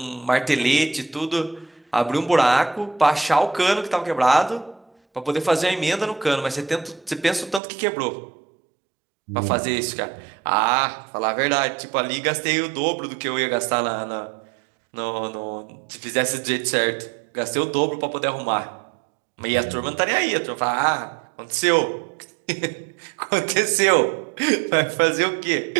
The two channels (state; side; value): drops out; left; at 7.6 s